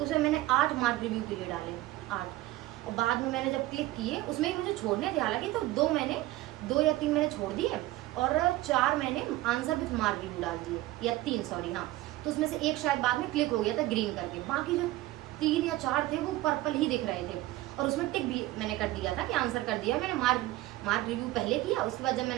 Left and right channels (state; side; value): quieter; left; 17.2 dB